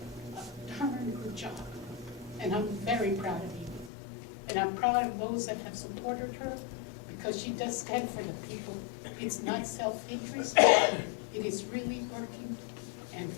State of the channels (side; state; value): right; drops out; at 3.9 s